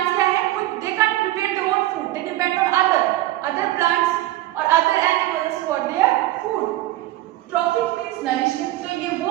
क्या है? खुद they can't prepare their own food. They depend on other plants और other animals for their food. Trophic means nourishment. तो ये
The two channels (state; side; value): quieter; left; 16.0 dB